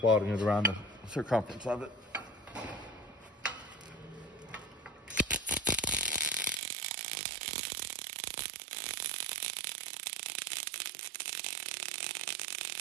welding it around the circumference of it.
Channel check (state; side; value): drops out; left; at 6.6 s